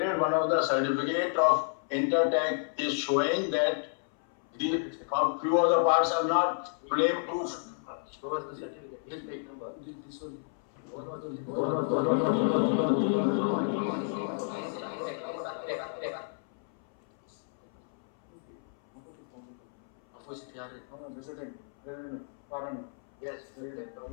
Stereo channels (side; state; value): right; silent; 57 dB below the other